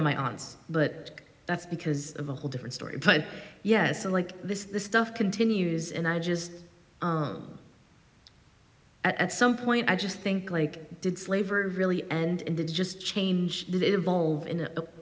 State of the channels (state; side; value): identical; both; correlation 1.00